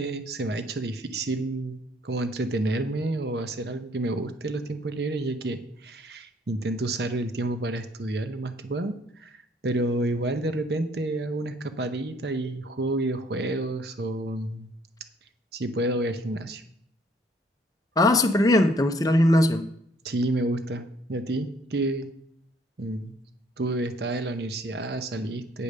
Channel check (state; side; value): normal; both; correlation 0.62